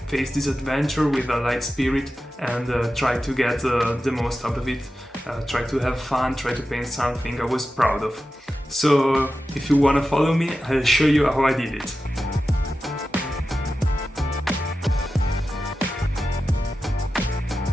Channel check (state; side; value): normal; both; correlation 0.92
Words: this adventure with a light spirit and try to get the most out of it, try to have fun, try to paint something I was proud of. So if you wanna follow me, I'll show you how I did it.